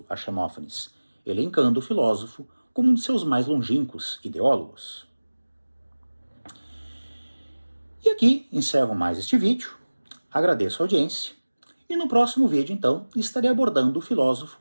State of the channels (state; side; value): inverted; both; correlation -1.00